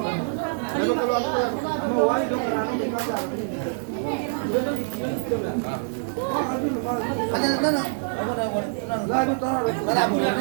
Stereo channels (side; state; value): left; silent; digital silence